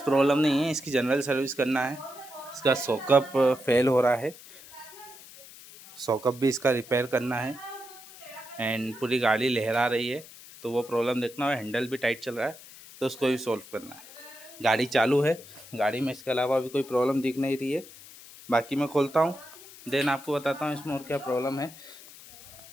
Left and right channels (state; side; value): noise; left; hiss, 18 dB below the sound